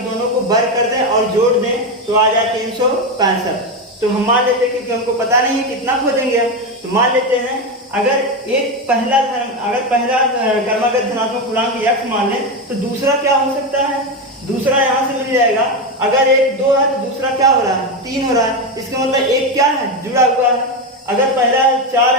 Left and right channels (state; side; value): normal; both; correlation 0.13